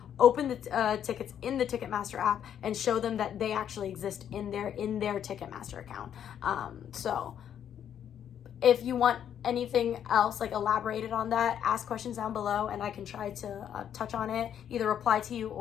open the tickets in the Ticketmaster app, and show them that they actually exist in their Ticketmaster account. So if you want anything else like elaborated on that, ask questions down below and I can try to touch on it, either reply to you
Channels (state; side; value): quieter; right; 9.4 dB